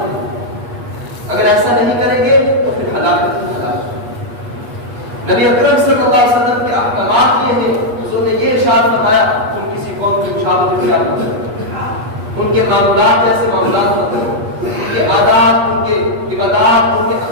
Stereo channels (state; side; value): late; left; 8.4 ms